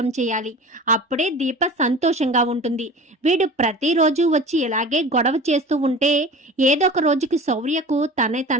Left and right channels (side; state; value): both; normal; correlation 0.38